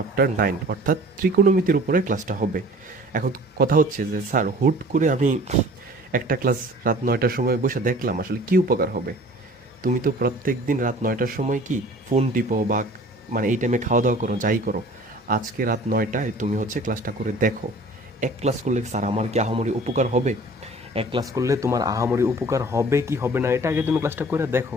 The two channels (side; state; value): both; normal; correlation 0.48